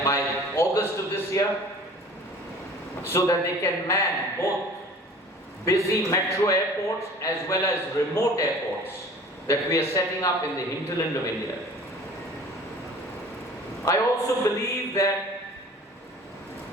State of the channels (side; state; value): both; normal; correlation 0.46